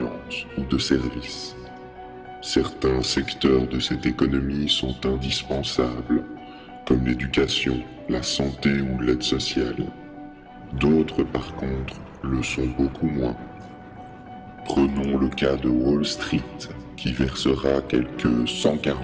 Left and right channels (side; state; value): both; identical; correlation 1.00